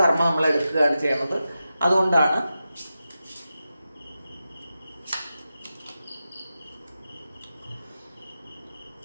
നമ്മൾ എടുക്കുകയാണ് ചെയ്യുന്നത്. അതുകൊണ്ടാണ്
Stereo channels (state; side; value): inverted; both; correlation -0.91